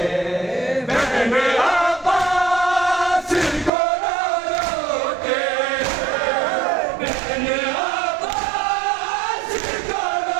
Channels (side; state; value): left; drops out; at 3.7 s